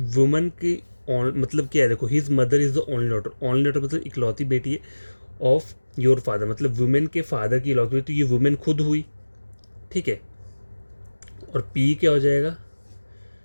की मतलब क्या है, देखो his mother is the only daughter, only daughter मतलब इकलौती बेटी है, ऑफ योर फादर मतलब वुमेन के फादर की इकलौती बेटी, तो ये वुमेन खुद हुई, ठीक है। और पी क्या हो जाएगा,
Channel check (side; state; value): both; inverted; correlation -1.00